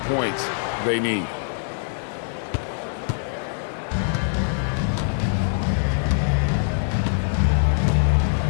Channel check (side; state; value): right; silent; 63 dB below the other